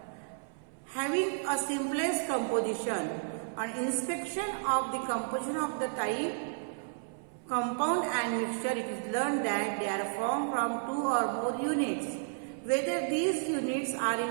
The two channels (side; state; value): left; silent; 56 dB below the other